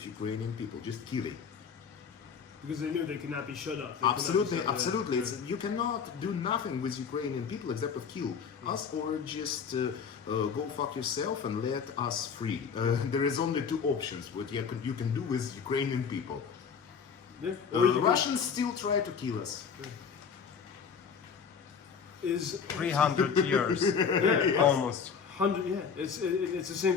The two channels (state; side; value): quieter; right; 6.4 dB